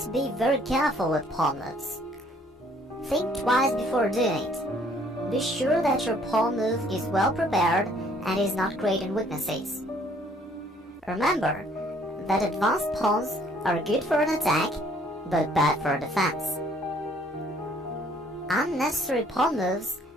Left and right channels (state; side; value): normal; both; correlation 0.61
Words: be very careful with pawn moves. Think twice before doing it. Be sure that your pawn move is well prepared and is not creating weaknesses. Remember that advanced pawns are good for an attack, but bad for defense. Unnecessary pawn moves